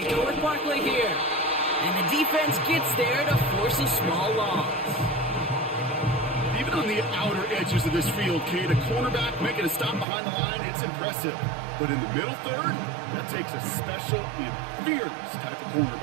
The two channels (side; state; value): left; drops out; at 10.1 s